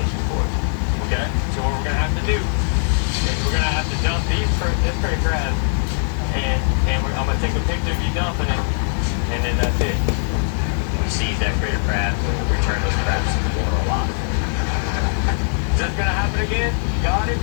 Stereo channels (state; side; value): silent; right; 59 dB below the other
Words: for it. Okay? So what we're going to have to do is we're going to have to dump this pretty crab, and I'm going to take a picture of you dumping it, and then that's it. We seize that critter crab, and we'll return those crabs to the water alive. Is this going to happen again? Got it?